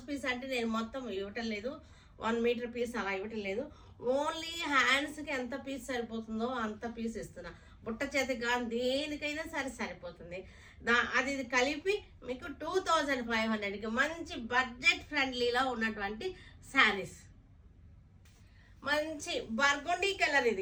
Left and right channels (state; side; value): identical; both; correlation 1.00